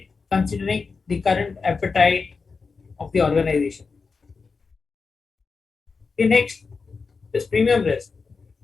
considering the current appetite of the organization. The next is premium risk.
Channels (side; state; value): right; quieter; 4.7 dB